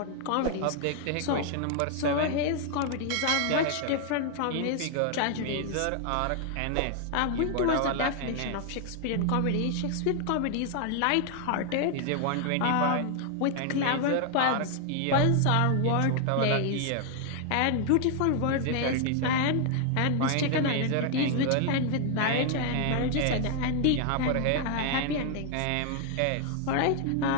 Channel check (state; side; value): different; both; correlation 0.00